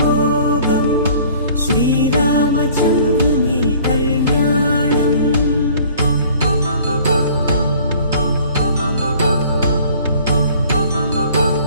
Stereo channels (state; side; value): inverted; both; correlation -0.52